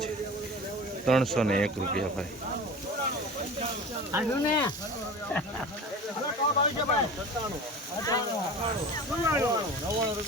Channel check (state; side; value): normal; both; correlation 0.36